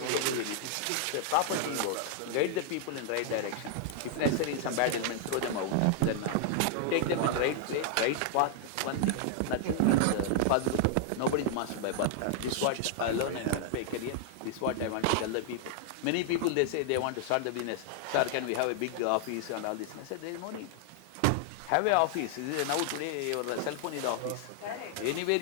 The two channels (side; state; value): both; different; correlation -0.01